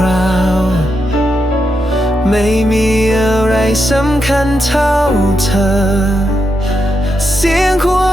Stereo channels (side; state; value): both; normal; correlation 0.84